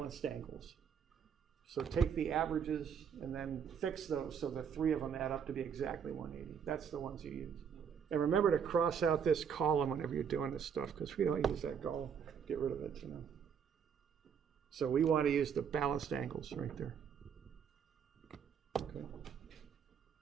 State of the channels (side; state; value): left; quieter; 7.4 dB